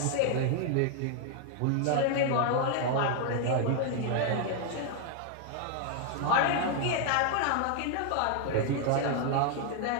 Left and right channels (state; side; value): different; both; correlation 0.00